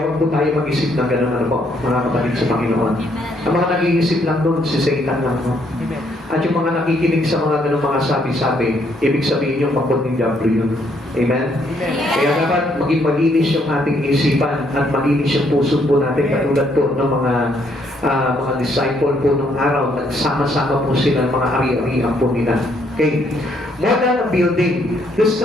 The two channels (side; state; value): both; normal; correlation 0.70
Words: huwag po tayo mag-isip ng gano'n ano po, mga kapatid sa Panginoon. Ang mga nag-iisip lang doon, si Satan lang po. At yung mga nakikinig sa mga gano'ng mga sabi-sabi, ibig sabihin yung pagpun ng Diablo yun. Amen? Kaya dapat maging malinis yung ating isipan at malinis yung puso po natin katulad po ng mga disciple po nung araw, nagsama-sama po sila, mga ari-arian po nila. Okay. More than a building. The